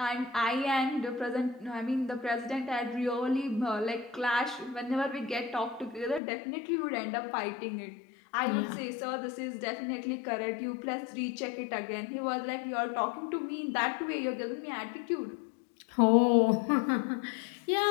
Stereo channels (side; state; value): right; drops out; at 6.2 s